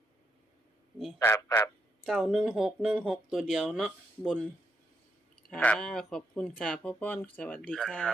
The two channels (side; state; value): both; normal; correlation 0.79